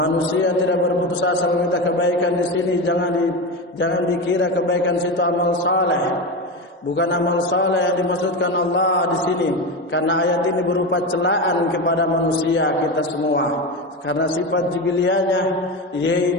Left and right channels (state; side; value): normal; both; correlation 0.20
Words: tidak berputus asa meminta kebaikan di sini jangan dikira kebaikan situ amal saleh. Bukan amal saleh yang dimaksudkan Allah di sini, karena ayat ini berupa celaan kepada manusia kita semua. Karena sifat jibilianya